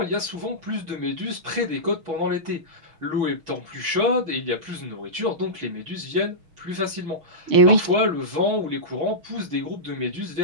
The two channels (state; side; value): late; left; 6.3 ms